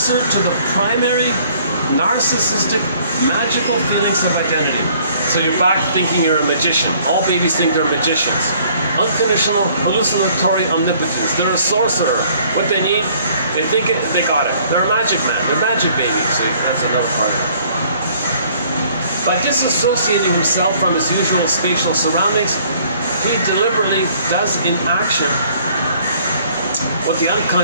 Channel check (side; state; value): both; inverted; correlation -0.59